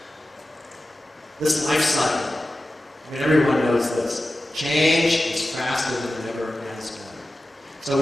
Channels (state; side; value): normal; both; correlation 0.94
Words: This life cycle, everyone knows this. Change is faster than it ever has been. So